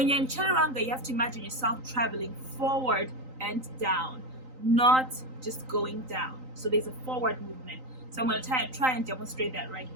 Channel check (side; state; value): left; late; 3.9 ms